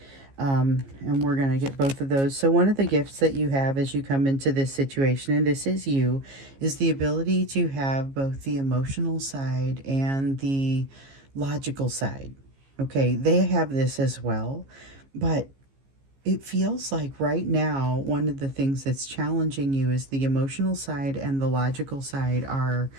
And we're going to get both of those. So one of the gifts that you have as you come into this situation, and this is you, is the ability to have both the emotional side and the logical side. Okay, they have this as well, but it feels like right now one of the things that's challenging you is the emotional side and the logical side are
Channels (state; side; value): late; left; 15 ms